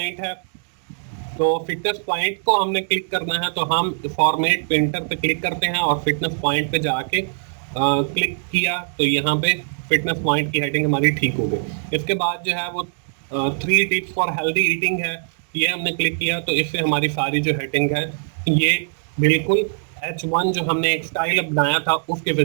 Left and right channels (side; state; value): left; silent; digital silence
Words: है। तो फिटनेस पॉइंट को हमने क्लिक करना है तो हम फॉर्मेट पेंटर पे क्लिक करते हैं और फिटनेस पॉइंट पे जाके क्लिक किया तो यहाँ पे फिटनेस पॉइंट की हेडिंग हमारी ठीक हो गई। इसके बाद जो है वो 3 टिप्स फॉर हेल्दी ईटिंग है, ये हमने क्लिक किया तो इससे हमारी सारी जो हेडिंग है ये बिल्कुल H1 जो हमने एक स्टाइल बनाया था उसके